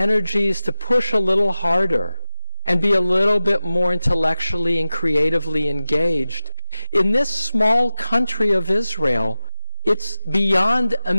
to push a little harder and be a little bit more intellectually and creatively engaged. In this small country of Israel, it's beyond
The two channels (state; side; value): inverted; both; correlation -1.00